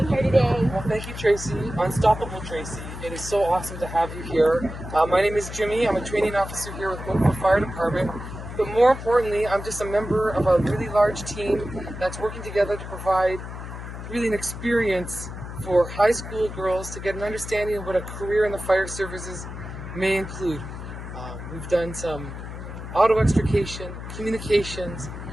here today? Well, thank you, Tracy. Unstoppable Tracy. It is so awesome to have you here. My name is Jimmy. I'm a training officer here with Oakville Fire Department. But more importantly, I'm just a member of a really large team that's working together to provide really an experience for high school girls to get an understanding of what a career in the fire services may include. We've done some auto extrication, communications,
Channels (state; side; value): noise; left; hum, 9 dB below the sound